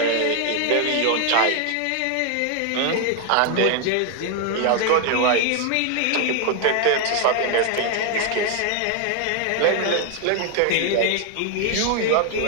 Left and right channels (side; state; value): both; different; correlation 0.00